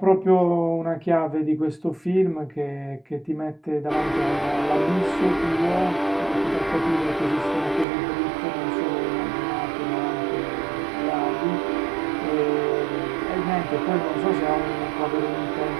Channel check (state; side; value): drops out; left; at 7.9 s